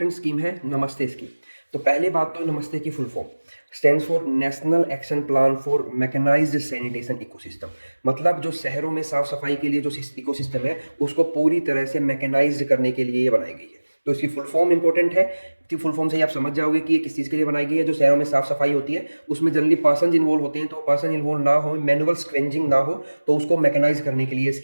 स्कीम है नमस्ते स्कीम। तो पहले बात तो नमस्ते की full form stands for national action plan for mechanised sanitation ecosystem. मतलब जो शहरों में साफ सफाई के लिए जो इकोसिस्टम है उसको पूरी तरह से मैकेनाइज्ड करने के लिए ये बनाई गई है। तो इसकी फुल फॉर्म इंपॉर्टेंट है, तो फुल फॉर्म से ही आप समझ जाओगे कि ये किस चीज़ के लिए बनाई गई है। जो शहरों में साफ सफाई होती है उसमें जनरली पर्सन इन्वॉल्व होते हैं, तो पर्सन इन्वॉल्व ना हो, मैनुअल स्क्वेंजिंग ना हो, तो उसको मैकेनाइज करने के लिए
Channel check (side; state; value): both; inverted; correlation -1.00